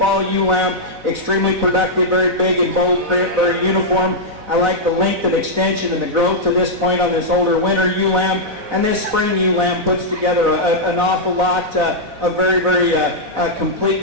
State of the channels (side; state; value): left; late; 4.0 ms